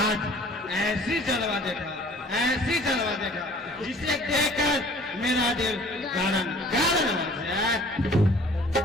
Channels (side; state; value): both; normal; correlation 0.52